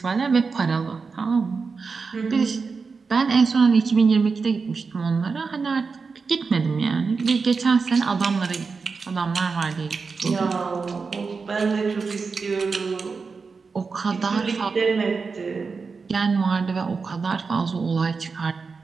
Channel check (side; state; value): left; quieter; 4.8 dB